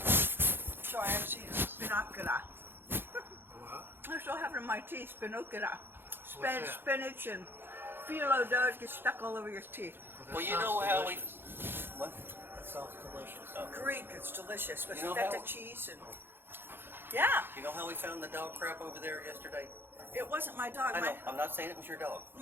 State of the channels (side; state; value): left; late; 0.10 ms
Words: So I have seen spinacula. What? I still have it in my teeth, spinacula. What's that? Spinach and phyllo does get stuck all over your teeth. Well, you know how we. What? That sounds delicious. Greek, it's delicious with You know feta how- cheese and. Yeah, You know how we found the dog crap over there yesterday? it wasn't my dog. I know. I'm not saying it was your dog.